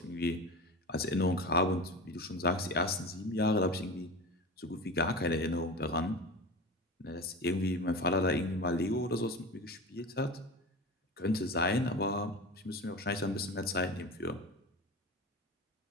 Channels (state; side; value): normal; both; correlation 0.30